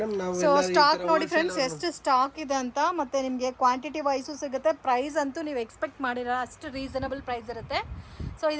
ನಾವು ಸೊ ಸ್ಟಾಕ್ ನೋಡಿ ಫ್ರೆಂಡ್ಸ್ ಎಷ್ಟು ಸ್ಟಾಕ್ ಇದೆ ಅಂತ, ಮತ್ತೆ ನಿಮಗೆ ಕ್ವಾಂಟಿಟಿ ವೈಸು ಸಿಗುತ್ತೆ. ಪ್ರೈಸ್ ಅಂತೂ ನೀವು ಎಕ್ಸ್ಪೆಕ್ಟ್ ಮಾಡಿರೋ ಅಷ್ಟು ರೀಸನಬಲ್ ಪ್ರೈಸ್ ಇರುತ್ತೆ. ಸೊ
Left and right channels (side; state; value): both; identical; correlation 1.00